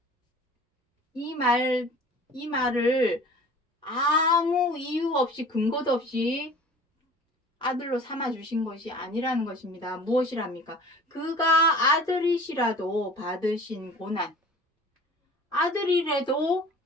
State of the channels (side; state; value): both; normal; correlation 0.44